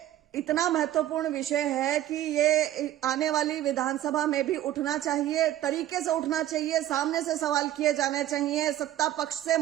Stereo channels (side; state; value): left; quieter; 12.9 dB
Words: इतना महत्वपूर्ण विषय है कि ये आने वाली विधानसभा में भी उठना चाहिए, तरीके से उठना चाहिए, सामने से सवाल किए जाने चाहिए सत्ता पक्ष से,